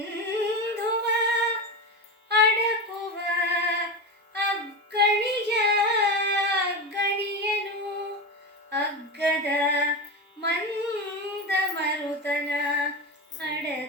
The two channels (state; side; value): normal; both; correlation 0.20